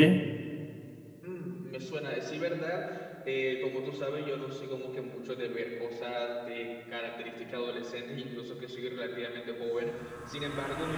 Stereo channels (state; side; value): identical; both; correlation 1.00